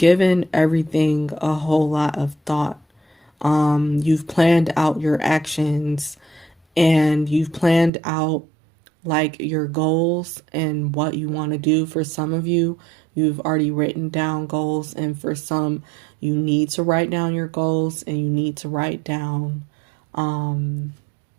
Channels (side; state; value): left; drops out; at 7.9 s